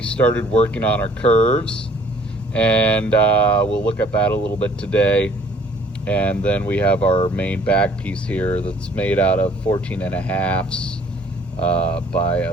started working on our curves, and we'll look at that a little bit today. And then we have our main back piece here that's made out of 14.5s by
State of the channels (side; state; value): both; normal; correlation 0.58